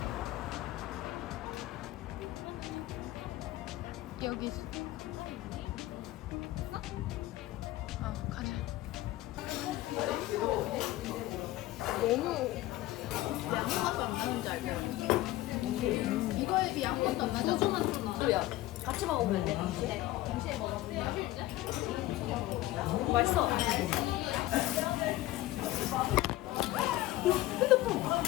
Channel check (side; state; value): right; quieter; 16.5 dB